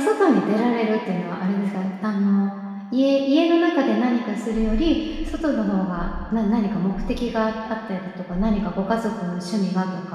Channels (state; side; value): identical; both; correlation 1.00